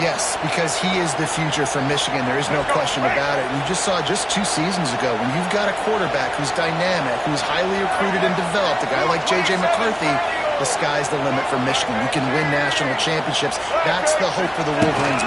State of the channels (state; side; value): identical; both; correlation 1.00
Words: Yes, because he is the future for Michigan. There is no question about it. You just saw just 2 seasons ago when you've got a quarterback who's dynamic, who's highly recruited and developed, a guy like J.J. McCarthy, the sky's the limit for Michigan. You can win national championships. That's the hope for the Wolverines